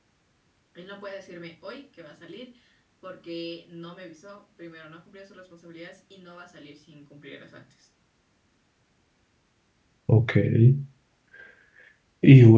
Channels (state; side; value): identical; both; correlation 1.00